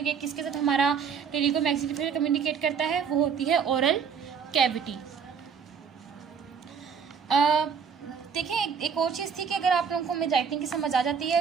ये किसके साथ हमारा टेरिगो मैक्सिलरी फिशर कम्युनिकेट करता है, वो होती है ओरल कैविटी। देखिए एक और चीज़ थी कि अगर आप लोगों को मेरी राइटिंग की समझ आ जाती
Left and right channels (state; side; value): quieter; left; 6.7 dB